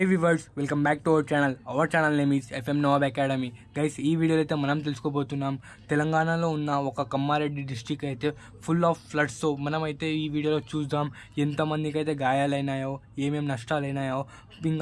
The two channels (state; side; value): identical; both; correlation 1.00